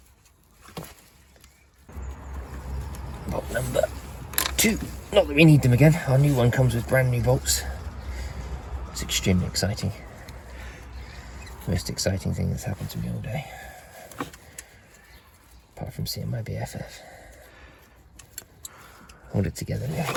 Bolt number 2. Not that we need them again. Our new one comes with brand new bolts. It's extremely exciting. Most exciting thing that's happened to me all day. Apart from seeing my BFF. Hold it together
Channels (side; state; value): both; identical; correlation 1.00